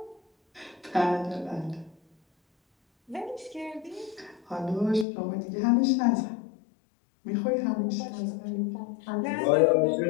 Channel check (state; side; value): drops out; right; at 5.1 s